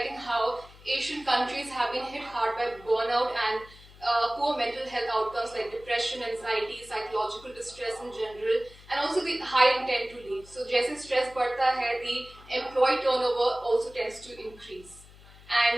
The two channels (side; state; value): left; noise; hum, 22 dB below the sound